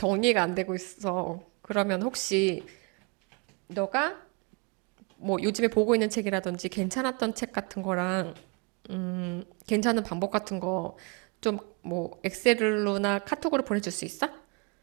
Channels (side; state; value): left; quieter; 32.4 dB